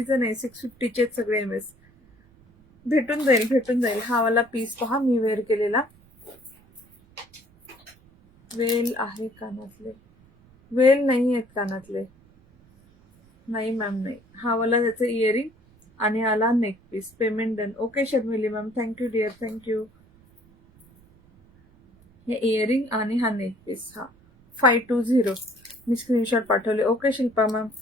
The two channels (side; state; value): right; noise; rumble, 29 dB below the sound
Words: नाही, 650चे सगळे MS. भेटून जाईल. हा वाला पीस पहा मी वेअर केलेला. वेल आहे कानातले, वेल नाही आहेत कानातले, नाही मॅम नाही. हा वाला त्याचं इयरिंग आणि आला neck piece. Payment done. Okay Sharmili ma'am, thank you dear, thank you. हे इयरिंग आणि हा नेक पीस. हा 520 मी स्क्रीनशॉट पाठवले. ओके शिल्पा मॅम,